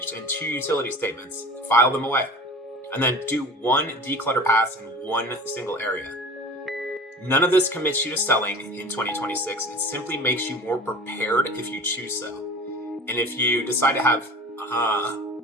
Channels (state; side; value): normal; both; correlation 0.39